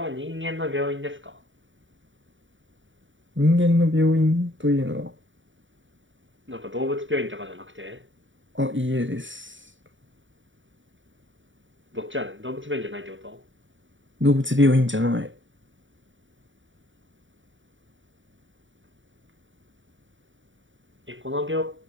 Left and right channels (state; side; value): late; left; 0.56 ms